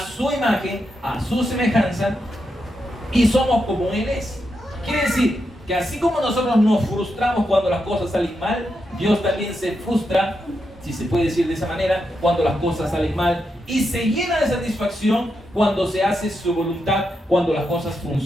imagen, a su semejanza, y somos como Él es. Quiere decir que así como nosotros nos frustramos cuando las cosas salen mal, Dios también se frustra, si se puede decir de esa manera, cuando las cosas salen mal, y se llena de satisfacción cuando se hace su voluntad, cuando las cosas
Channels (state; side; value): normal; both; correlation 0.84